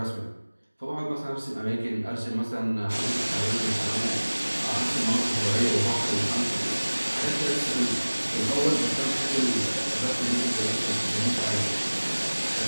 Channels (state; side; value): inverted; both; correlation -1.00